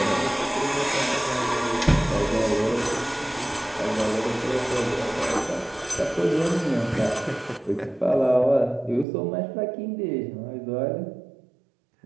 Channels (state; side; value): drops out; left; at 9.1 s